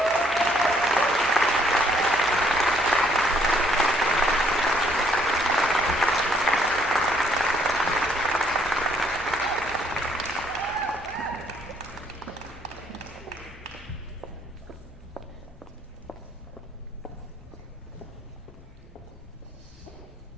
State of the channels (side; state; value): both; normal; correlation 0.66